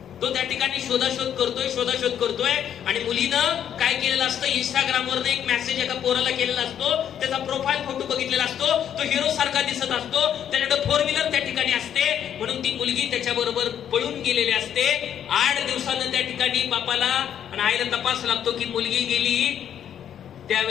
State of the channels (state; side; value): quieter; right; 9.5 dB